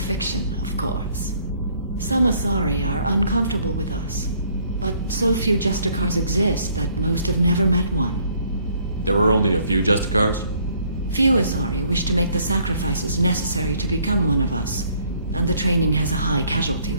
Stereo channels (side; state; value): both; inverted; correlation -0.63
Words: of course. Some Asari are uncomfortable with us, but so few Justicars exist that most have never met one. There were only a few Justicars? Few Asari wish to make the sacrifices necessary to become one of us, and the training has a high casualty